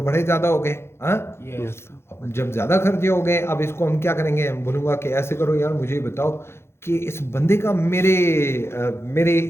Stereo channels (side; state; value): right; late; 0.12 ms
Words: बड़े ज़्यादा हो गए। हाँ, यस अब जब ज़्यादा खर्चे हो गए, अब इसको हम क्या करेंगे, हम बोलूँगा कि ऐसे करो यार, मुझे बताओ कि इस बंदे का मेरे